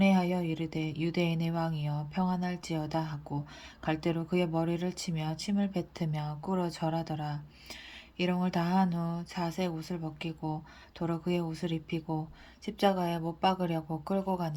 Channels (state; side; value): identical; both; correlation 1.00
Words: 이르되 유대인의 왕이여 평안할지어다 하고 갈대로 그의 머리를 치며 침을 뱉으며 꿇어 절하더라. 이롱을 다한 후 자색 옷을 벗기고 도로 그의 옷을 입히고 십자가에 못 박으려고 끌고